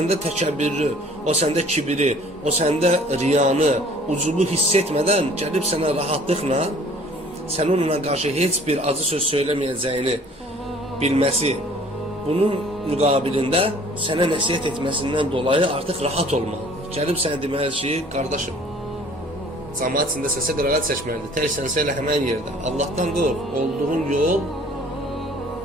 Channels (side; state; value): both; normal; correlation 0.52